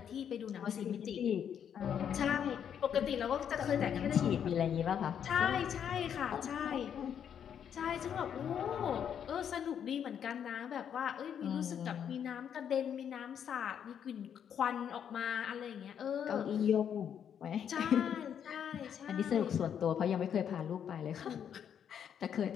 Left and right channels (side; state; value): right; quieter; 8.5 dB